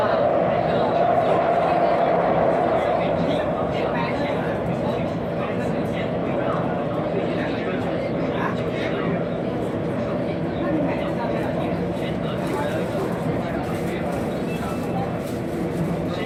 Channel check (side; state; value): both; identical; correlation 1.00